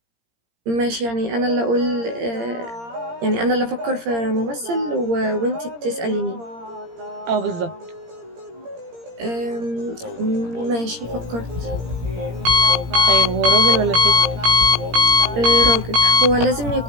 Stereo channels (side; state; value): left; late; 17 ms